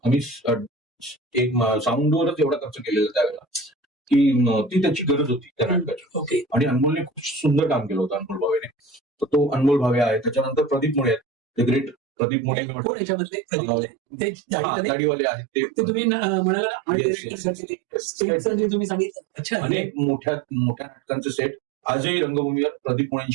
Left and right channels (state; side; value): drops out; left; at 12.0 s